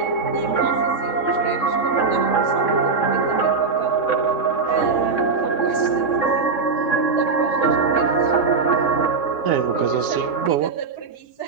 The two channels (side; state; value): left; quieter; 4.7 dB